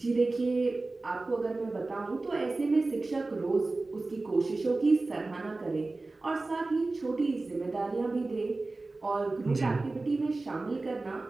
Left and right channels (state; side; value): quieter; left; 3.3 dB